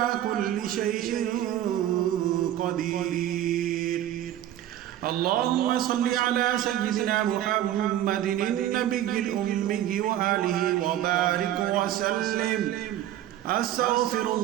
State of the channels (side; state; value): left; quieter; 12.3 dB